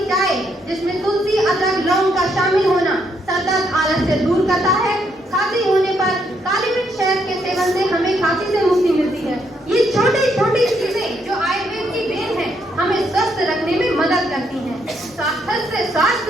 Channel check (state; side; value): normal; both; correlation 0.75